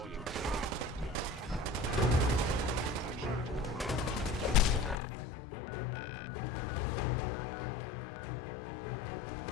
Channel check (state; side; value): drops out; right; at 5.0 s